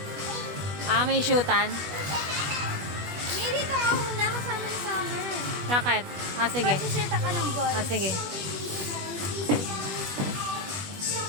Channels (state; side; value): late; left; 21 ms